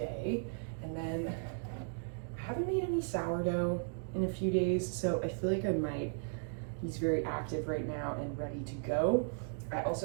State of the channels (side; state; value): left; silent; digital silence